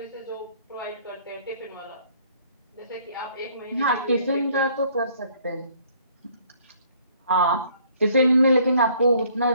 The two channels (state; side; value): inverted; both; correlation -0.61